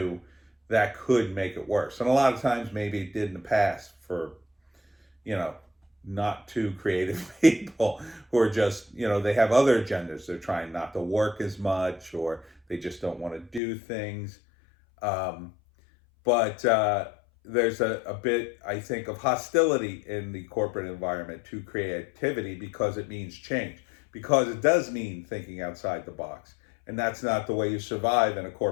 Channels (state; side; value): drops out; right; at 13.6 s